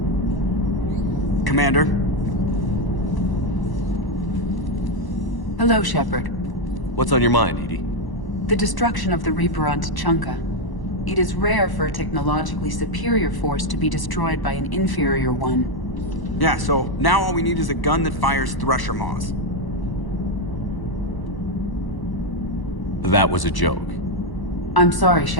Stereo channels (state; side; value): late; right; 1.0 ms